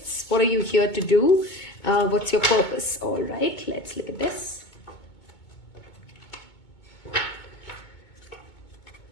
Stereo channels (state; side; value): late; right; 2.2 ms